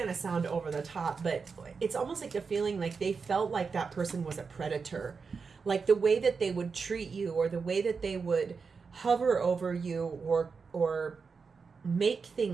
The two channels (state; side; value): quieter; left; 5.2 dB